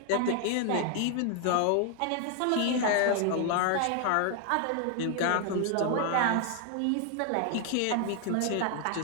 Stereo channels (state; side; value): different; both; correlation 0.00